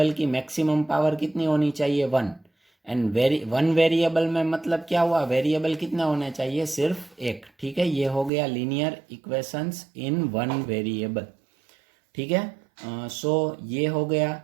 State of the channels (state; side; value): drops out; left; at 8.3 s